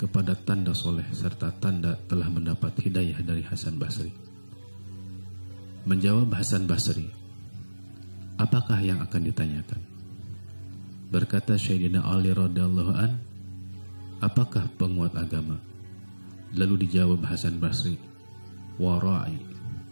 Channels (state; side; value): inverted; both; correlation -1.00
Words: tanda soleh serta tanda telah mendapat hidayah dari Hasan Basri. Menjawab Hasan Basri, "Apakah yang akan ditanyakan?" Berkata Sayyidina Ali radhiyallahu an, "Apakah penguat agama?" Lalu dijawab Hasan Basri, "Wara'i."